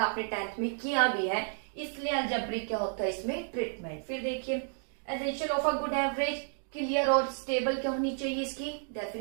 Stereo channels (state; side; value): silent; left; digital silence